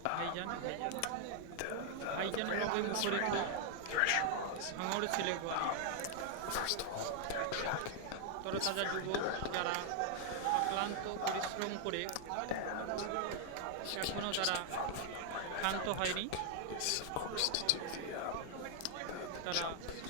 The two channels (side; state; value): both; different; correlation 0.00